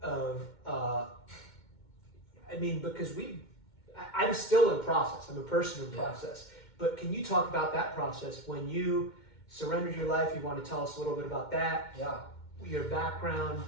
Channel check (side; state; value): right; late; 2.1 ms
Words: because I'm still in process. I'm a person in process. But can you talk about that process when you surrendered your life? You want to tell us a little bit about that? Yeah. Your background,